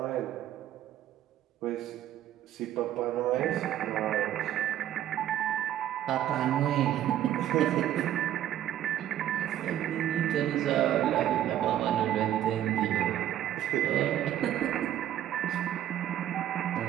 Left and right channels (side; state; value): left; quieter; 11.8 dB